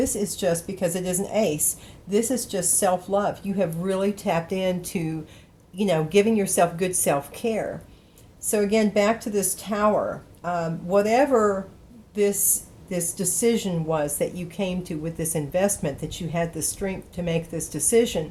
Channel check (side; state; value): both; identical; correlation 1.00